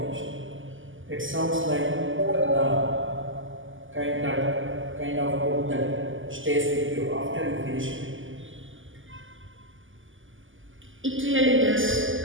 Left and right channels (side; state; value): left; late; 0.58 ms